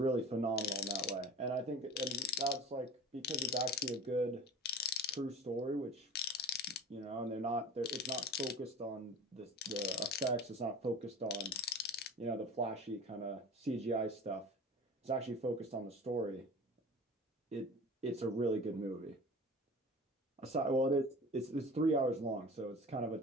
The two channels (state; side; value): normal; both; correlation 0.39